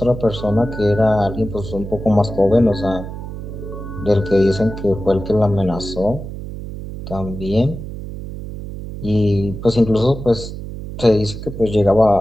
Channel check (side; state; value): right; noise; hum, 9 dB below the sound